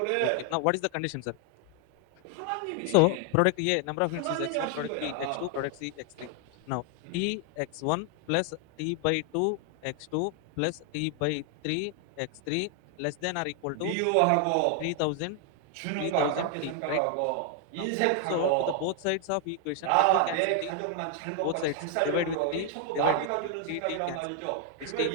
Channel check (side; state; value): both; different; correlation 0.00